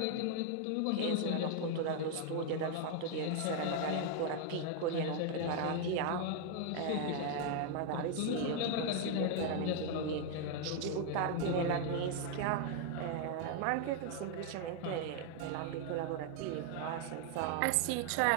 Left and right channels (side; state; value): both; different; correlation 0.00